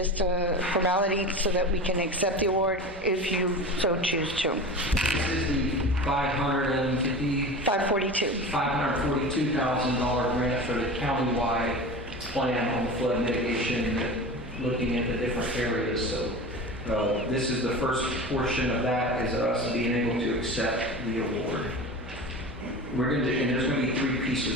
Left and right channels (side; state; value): both; normal; correlation 0.31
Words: a formality so that we can accept the award if you so choose to. This is the $542,000 grant for the countywide plan on the flood mitigation, looking at the different areas. So this is the first portion of that, is us being able to accept the award. We're going to, and there's going to be 3